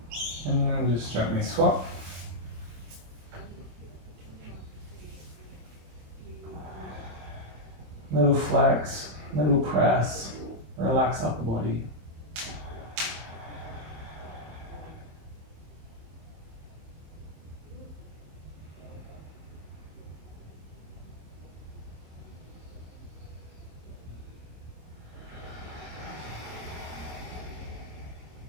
And then just gently swap. Little flex, little press, relax upper body.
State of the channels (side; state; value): left; late; 26 ms